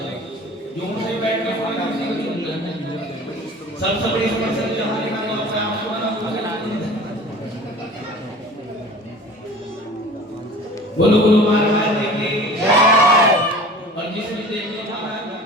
जो से बैठ कर कोई किसी को चुन लेते हैं। सबसे बड़ी समस्या जो हमारे यहाँ तो अपने आप को ना बोलो गुरु महाराज जी की जय। और जिसे भी देखने का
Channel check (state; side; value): normal; both; correlation 0.41